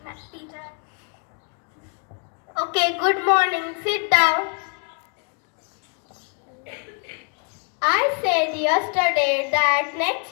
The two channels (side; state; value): right; quieter; 38.7 dB